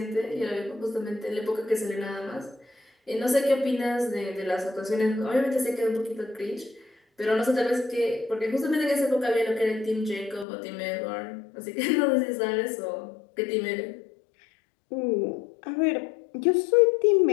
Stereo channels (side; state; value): right; drops out; at 10.5 s